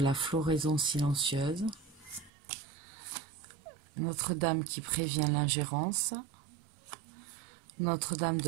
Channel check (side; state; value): left; drops out; at 2.3 s